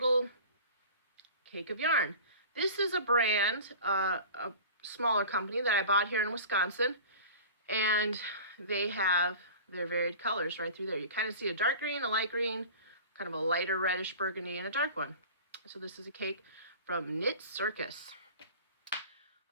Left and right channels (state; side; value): inverted; both; correlation -0.38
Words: cake of yarn. This is a brand, a smaller company that I bought here in Wisconsin, and they have their varied colors right through there. You kind of see a dark green, a light green, kind of a lighter reddish burgundy, and a dark one. So this is a cake from Knit Circus.